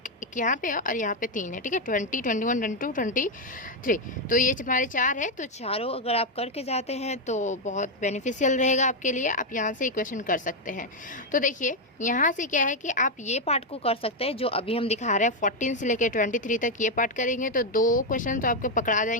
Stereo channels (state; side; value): normal; both; correlation 0.03